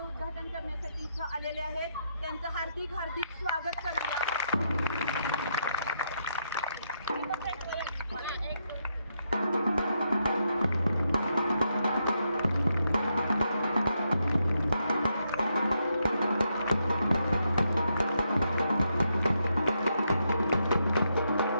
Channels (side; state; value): both; inverted; correlation -0.80